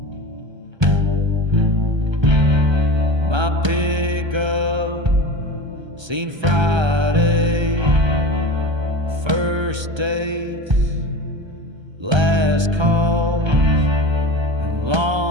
My pickup seen Friday, first dates, last calls, and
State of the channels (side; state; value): left; late; 1.3 ms